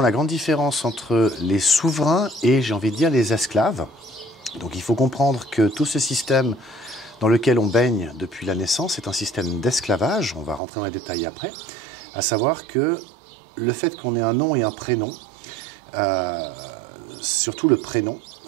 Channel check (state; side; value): drops out; left; at 10.6 s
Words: grande différence entre les souverains et, j'ai envie de dire, les esclaves. Donc il faut comprendre que tout ce système dans lequel on baigne depuis la naissance est un système d'esclavage, on va rentrer dans les détails après, à savoir que le fait qu'on ait un nom et un prénom, surtout le nom